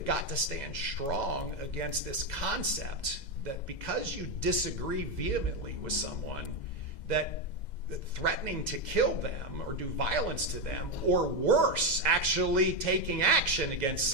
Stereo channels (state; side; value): late; right; 2.1 ms